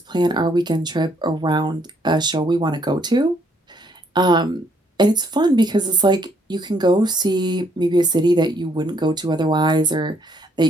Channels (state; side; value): normal; both; correlation 0.68